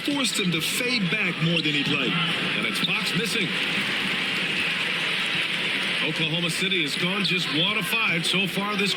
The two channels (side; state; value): both; identical; correlation 1.00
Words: him to fade back more than he'd like. And it's Fox missing. Oklahoma City has gone just 1 of 5 so far this